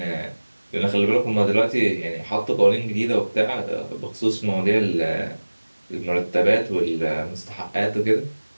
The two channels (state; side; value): inverted; both; correlation -1.00